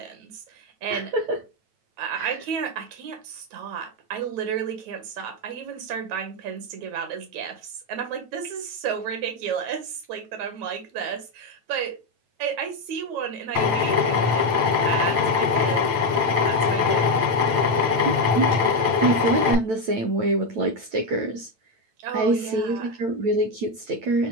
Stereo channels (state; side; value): late; left; 8.9 ms